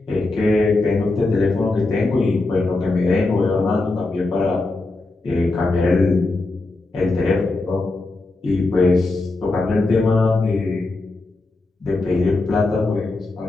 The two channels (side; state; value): right; quieter; 3.2 dB